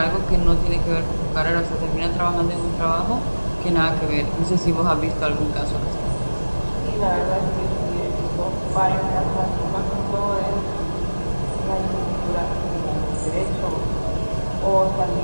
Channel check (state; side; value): inverted; both; correlation -1.00